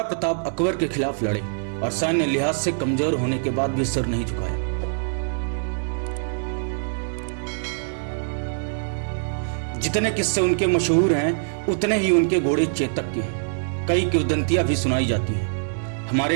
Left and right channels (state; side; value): silent; left; 63 dB below the other